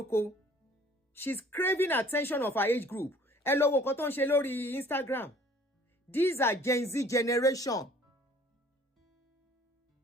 She's craving attention of her age group. Ẹ lọ wo nǹkan tó ń ṣe lórí Instagram. These are Gen Z generation.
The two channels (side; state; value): both; normal; correlation 0.54